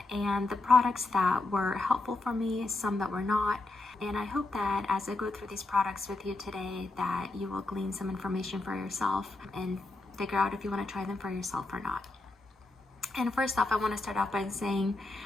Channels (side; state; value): right; quieter; 3.1 dB